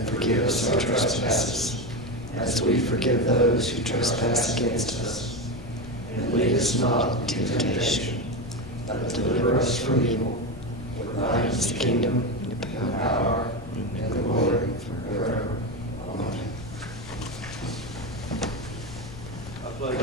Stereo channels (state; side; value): noise; left; rumble, 14 dB below the sound